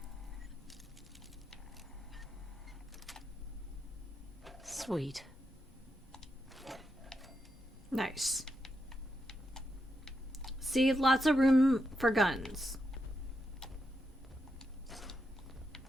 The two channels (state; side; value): normal; both; correlation 0.84